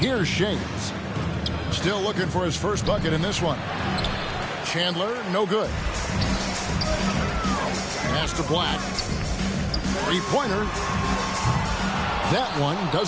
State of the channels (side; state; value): both; identical; correlation 1.00